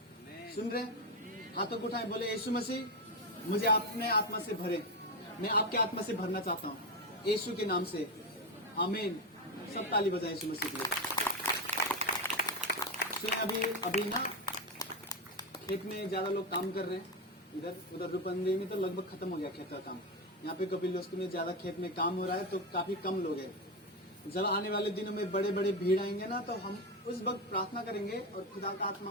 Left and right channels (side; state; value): both; normal; correlation 0.13